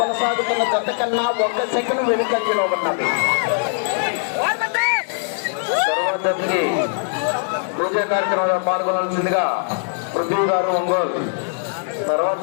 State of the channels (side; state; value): right; silent; 65 dB below the other